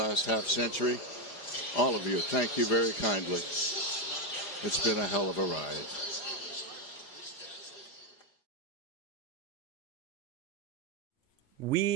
half century. All of you, thank you very kindly. It's been a hell of a ride.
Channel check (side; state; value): right; late; 4.9 ms